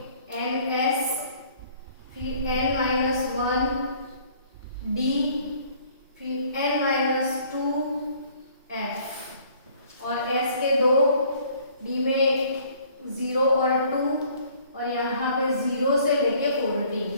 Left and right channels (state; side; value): inverted; both; correlation -0.58